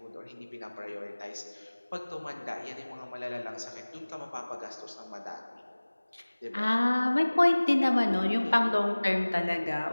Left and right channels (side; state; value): both; inverted; correlation -1.00